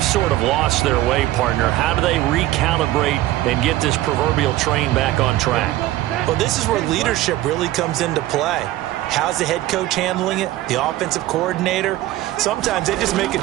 sort of lost their way, partner. How do they recalibrate and get this proverbial train back on track? Well, this is where leadership really comes into play. How's the head coach handling it? The offensive coordinator? Sometimes they just make a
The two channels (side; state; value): left; quieter; 15.6 dB